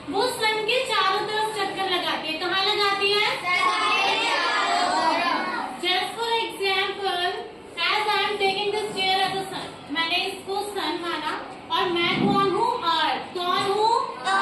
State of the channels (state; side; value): identical; both; correlation 1.00